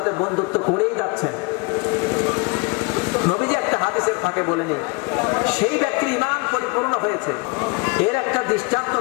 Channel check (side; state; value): right; quieter; 30.0 dB